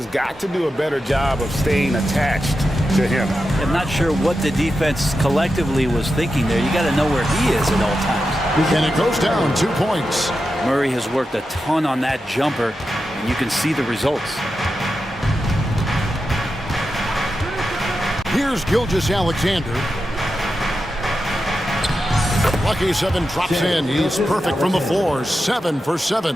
got to do a better job of staying attached to him. I'm not sure what the defense collectively was thinking there. You got to know where he is at all times. And it goes down 2 points. Murray has worked a ton on that jumper, and you can see the results. Here's Gilgeous-Alexander. Lucky 7 drops in. He's perfect from the floor. 7 for 7.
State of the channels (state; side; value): normal; both; correlation 0.90